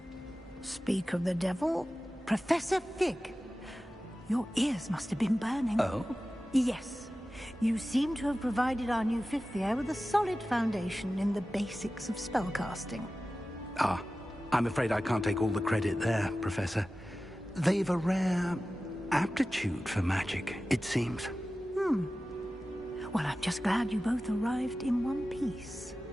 Speak of the devil, Professor Fig. Your ears must have been burning. Oh? Yes. You seem to have provided our new fifth year with a solid foundation in the basics of spellcasting. Ah, I'm afraid I can't take all the credit there, Professor. They've a rare aptitude for magic, it seems. Well, I'm just glad you both arrived in one piece.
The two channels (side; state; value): both; normal; correlation 0.95